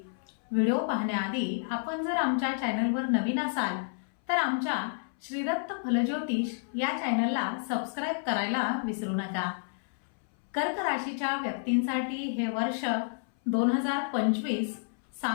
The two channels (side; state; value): right; silent; 58 dB below the other